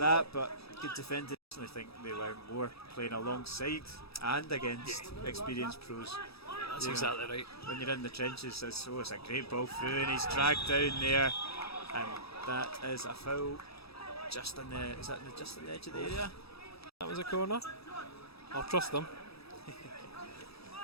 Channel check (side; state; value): right; late; 0.77 ms